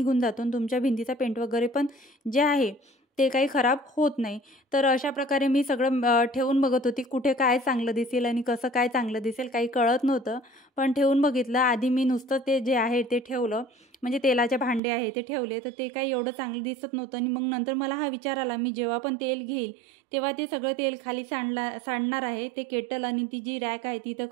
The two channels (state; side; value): drops out; left; at 14.8 s